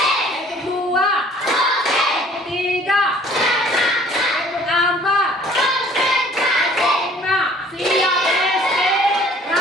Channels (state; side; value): normal; both; correlation 0.54